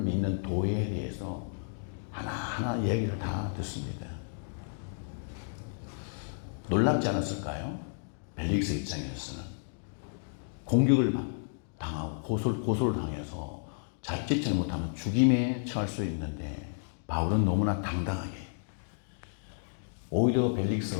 믿는 도에 대해서 하나하나 얘기를 다 듣습니다. 놀랍지 않았을까요? 벨릭스 입장에서는 공격을 당하고 고소를 당해서 자칫 잘못하면 죽임에 처할 수 있는데 바울은 너무나 당당하게 오히려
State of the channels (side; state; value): right; silent; digital silence